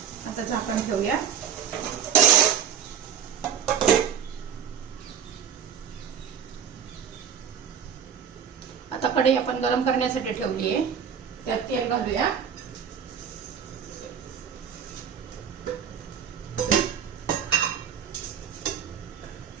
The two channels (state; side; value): quieter; left; 8.1 dB